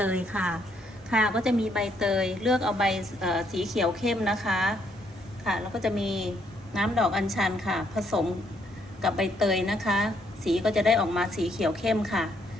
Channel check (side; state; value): both; normal; correlation 0.72